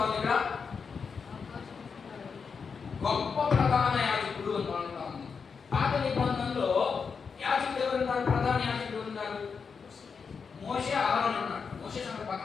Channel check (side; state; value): right; quieter; 5.7 dB